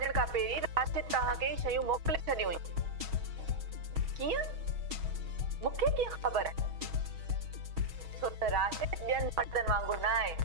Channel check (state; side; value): late; left; 6.3 ms